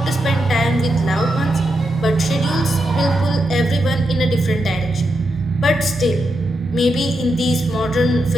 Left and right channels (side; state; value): both; normal; correlation 0.85